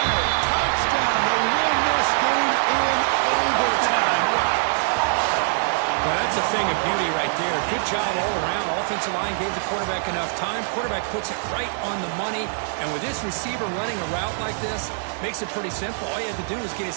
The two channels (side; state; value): left; silent; 58 dB below the other